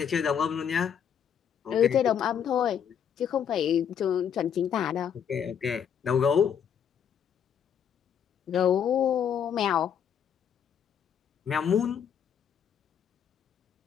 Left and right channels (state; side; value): quieter; right; 8.2 dB